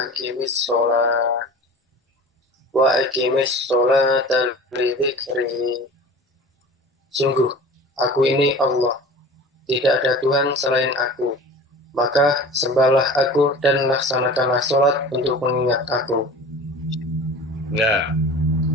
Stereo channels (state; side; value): normal; both; correlation 0.38